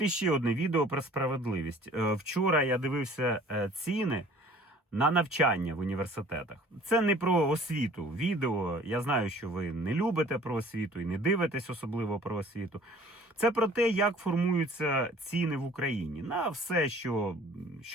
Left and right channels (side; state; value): both; normal; correlation 0.51